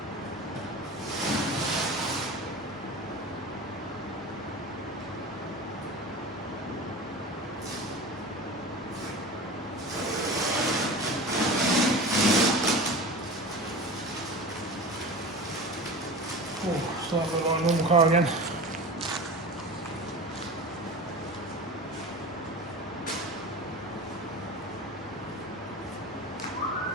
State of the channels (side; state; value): both; normal; correlation 0.32